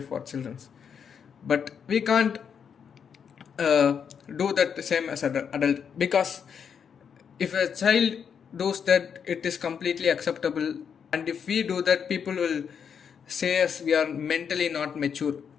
children, but we can't uh, do that the same as an adult, because if a child does that, it is completely acceptable, and if we do that, people will say us we are mentally not mature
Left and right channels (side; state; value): right; quieter; 7.2 dB